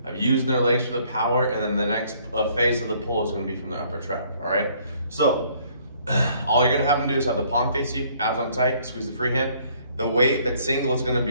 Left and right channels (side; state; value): both; inverted; correlation -0.62